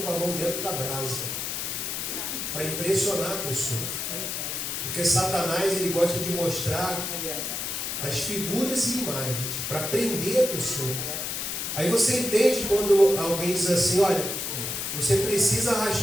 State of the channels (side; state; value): left; noise; hiss, 3 dB below the sound